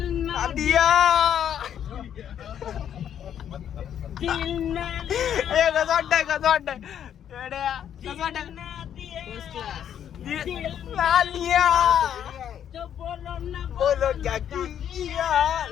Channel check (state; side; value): quieter; right; 9.5 dB